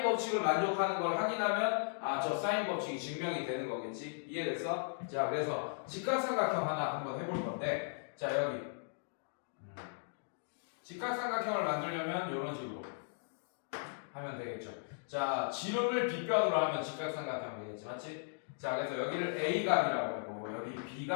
법칙을 만족하는 걸 확인하면 저 사인 법칙이 증명이 되는 거겠지. 이해됐어? 자, 그래서 직각삼각형 하나 한번 해볼 건데 자, 여기 직각삼각형을 만들려면 이런 식으로 하면 되겠죠. 자, 지름을 빗변으로 하면 직각삼각형 되겠지, 맞지? 자, 그래서 여기를 A각이라고 할 거고 여기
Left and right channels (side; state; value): right; silent; digital silence